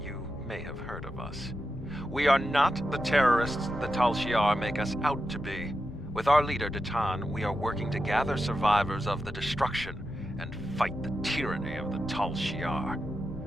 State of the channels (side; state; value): left; noise; rumble, 12 dB below the sound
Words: may have heard of us. We are not the terrorists the Tal Shiar make us out to be. With our leader, Datan, we are working to gather survivors of the destruction and fight the tyranny of the Tal Shiar.